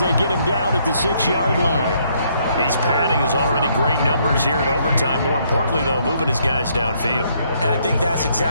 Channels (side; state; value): both; inverted; correlation -0.69